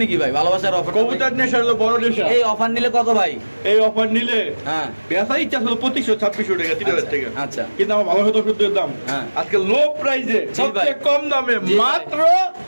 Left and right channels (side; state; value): both; inverted; correlation -1.00